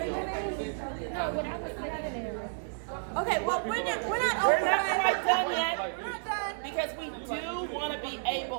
it. Okay, well, we're not quite done yet. We're not done. Because we do want to be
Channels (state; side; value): silent; left; digital silence